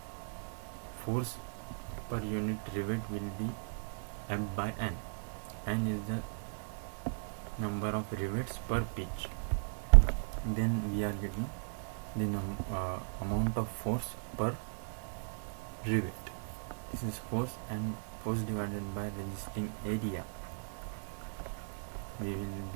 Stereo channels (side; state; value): left; silent; digital silence